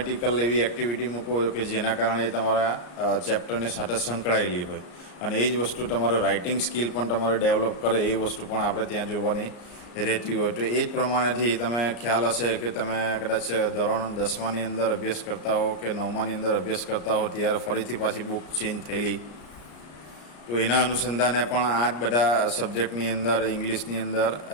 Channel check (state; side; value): late; right; 34 ms